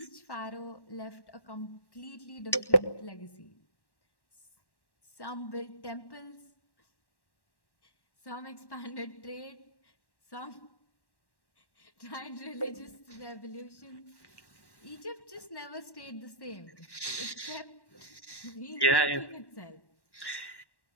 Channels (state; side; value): late; right; 1.1 ms